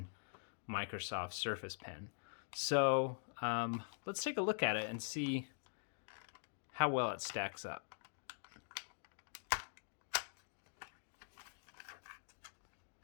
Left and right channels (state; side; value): silent; right; digital silence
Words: Microsoft Surface pen. So let's take a look at it and see how well it stacks up.